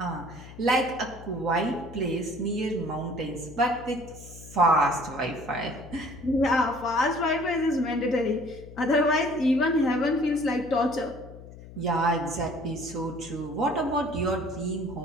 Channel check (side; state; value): left; noise; hum, 16 dB below the sound